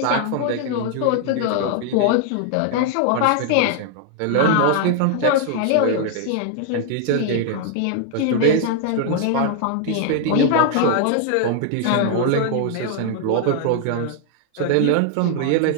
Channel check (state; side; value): different; both; correlation 0.00